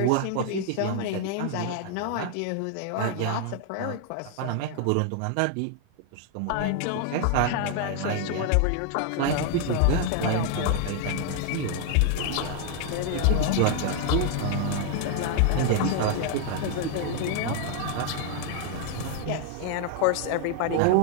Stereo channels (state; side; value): different; both; correlation 0.00